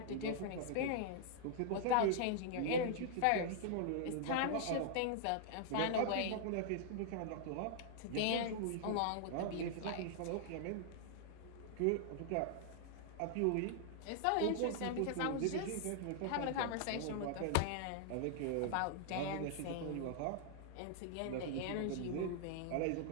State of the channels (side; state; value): both; different; correlation -0.01